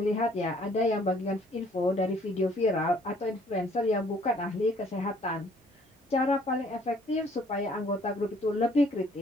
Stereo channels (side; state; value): both; normal; correlation 0.60